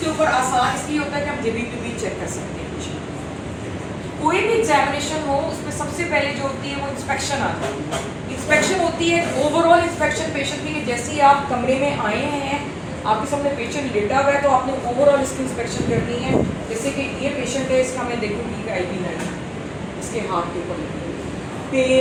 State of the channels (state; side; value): identical; both; correlation 1.00